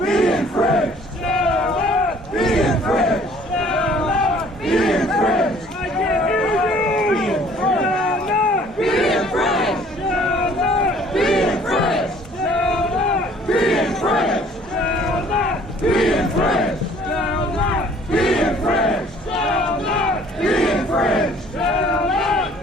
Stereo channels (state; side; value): normal; both; correlation 0.55